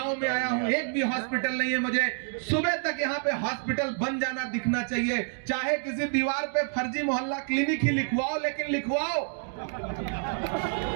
में आया हूं, एक भी हॉस्पिटल नहीं है, मुझे सुबह तक यहां पे हॉस्पिटल बन जाना दिखना चाहिए, चाहे किसी दीवार पे फर्जी मोहल्ला क्लिनिक ही लिखवाओ, लेकिन लिखवाओ।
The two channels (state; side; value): silent; left; 59 dB below the other